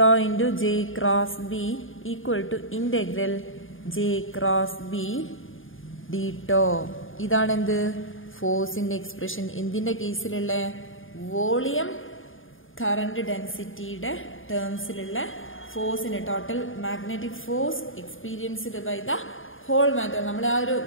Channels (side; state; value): right; late; 0.59 ms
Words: into J cross B equal to integral J cross B D tau. ഇതാണ് എന്ത്? ഫോഴ്സിന്റെ എക്സ്പ്രഷൻ. എന്തിന്റെ കേസിലുള്ള? വോളിയം കറണ്ട് ഡെൻസിറ്റിയുടെ ടേംസിലുള്ള ഫോഴ്സിന്, total magnetic force experienced by the whole matter. നമ്മൾ ആ ഒരു